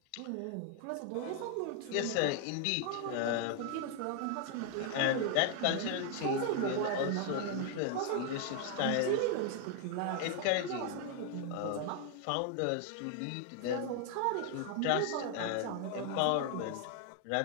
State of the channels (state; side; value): different; both; correlation 0.00